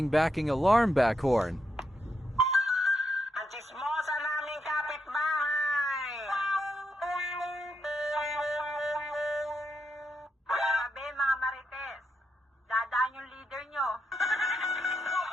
backing alarm back horn. Ang chismosa naming kapitbahay! Sabi mga marites, dadaan yung leader nyo.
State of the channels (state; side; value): normal; both; correlation 0.82